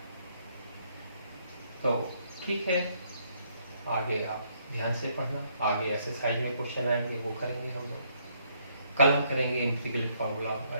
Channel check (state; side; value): inverted; both; correlation -0.70